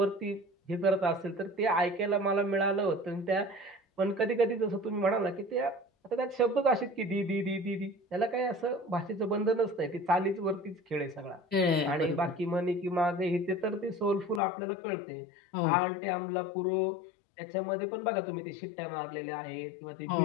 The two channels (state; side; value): drops out; right; at 14.4 s